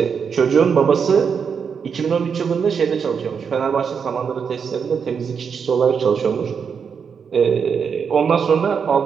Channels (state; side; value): quieter; left; 6.5 dB